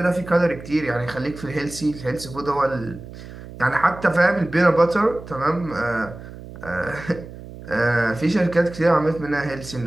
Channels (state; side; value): noise; right; hum, 14 dB below the sound